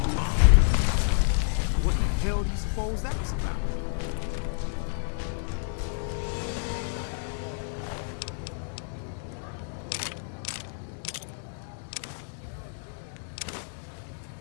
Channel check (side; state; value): right; silent; digital silence